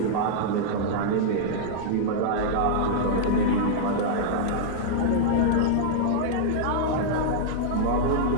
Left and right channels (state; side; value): different; both; correlation -0.02